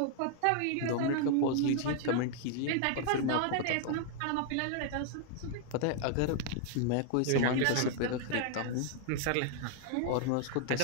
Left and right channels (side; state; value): both; different; correlation 0.00